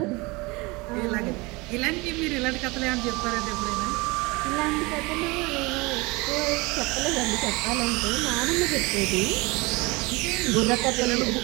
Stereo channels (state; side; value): quieter; left; 24.8 dB